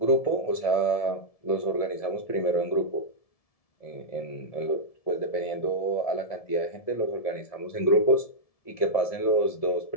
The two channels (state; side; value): late; right; 1.7 ms